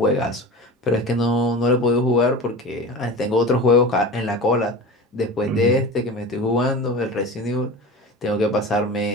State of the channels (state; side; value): normal; both; correlation 0.31